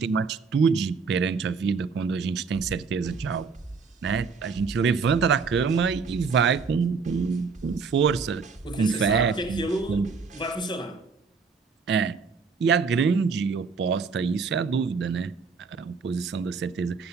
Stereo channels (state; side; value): quieter; left; 5.1 dB